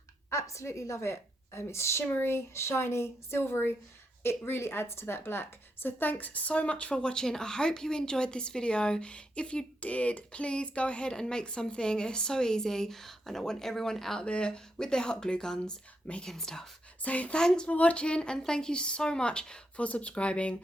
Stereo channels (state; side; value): normal; both; correlation 0.81